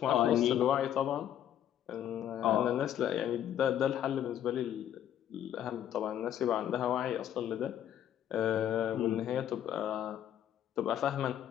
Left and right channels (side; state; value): right; quieter; 10.6 dB